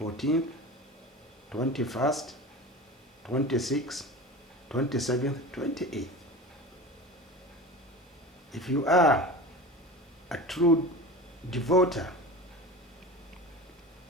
21st, 26th, 27th, 28th. If you are a true devoter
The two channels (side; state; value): both; normal; correlation 0.33